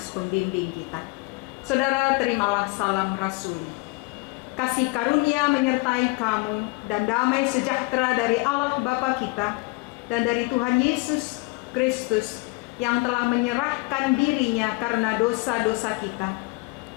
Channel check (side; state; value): right; quieter; 26.2 dB